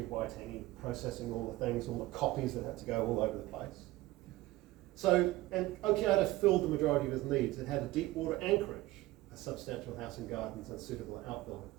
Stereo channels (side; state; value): left; quieter; 17.9 dB